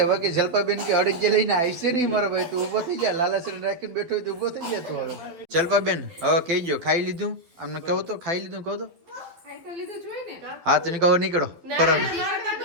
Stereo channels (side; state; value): left; late; 12 ms